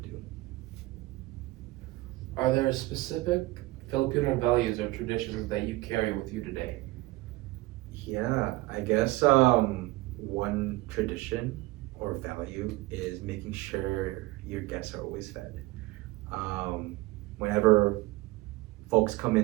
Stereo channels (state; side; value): quieter; left; 20.0 dB